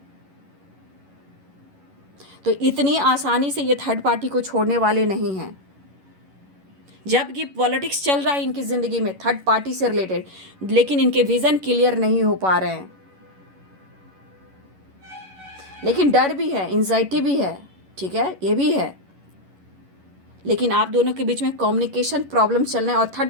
तो इतनी आसानी से ये थर्ड पार्टी को छोड़ने वाले नहीं हैं। जबकि पॉलिटिक्स चल रहा है इनकी ज़िंदगी में थर्ड पार्टी से रिलेटेड, लेकिन इनके विज़न क्लियर नहीं हो पा रहे हैं। लेकिन डर भी है, एंजाइटी भी है, ठीक है, ये भी है। लेकिन आप दोनों के बीच में कम्युनिकेशन प्रॉब्लम चल रहे हैं, और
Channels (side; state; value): left; late; 11 ms